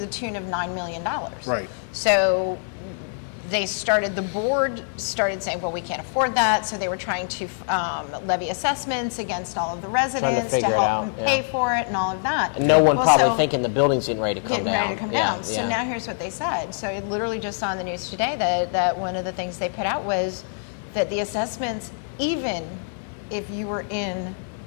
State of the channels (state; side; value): silent; right; 59 dB below the other